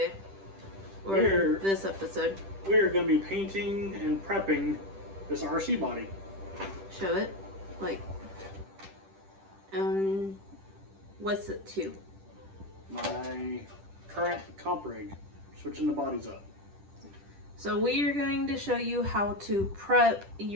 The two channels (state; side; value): late; left; 10 ms